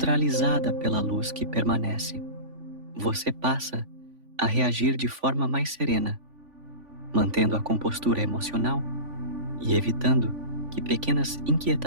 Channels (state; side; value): late; left; 3.5 ms